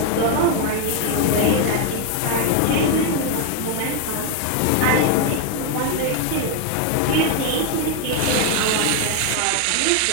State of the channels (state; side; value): different; both; correlation 0.01